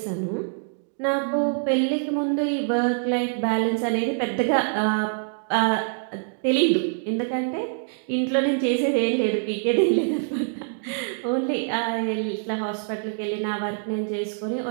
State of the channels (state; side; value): silent; left; digital silence